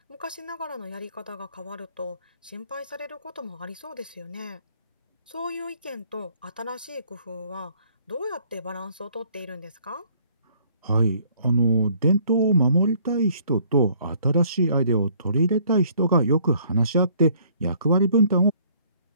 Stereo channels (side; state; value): both; inverted; correlation -0.61